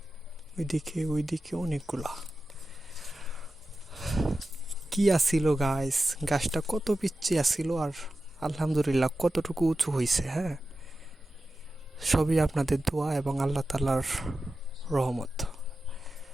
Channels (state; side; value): normal; both; correlation 0.93